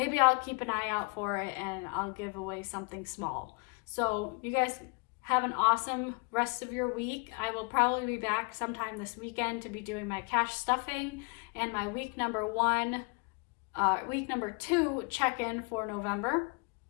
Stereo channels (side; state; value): right; quieter; 33.1 dB